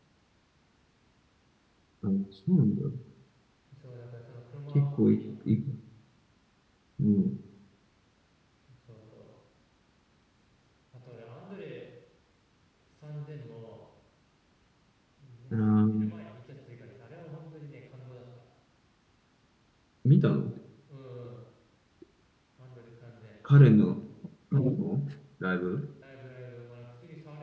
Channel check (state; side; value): identical; both; correlation 1.00